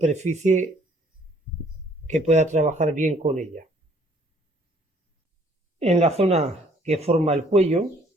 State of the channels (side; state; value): both; normal; correlation 0.61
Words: que pueda trabajar bien con ella. En la zona que forma el cuello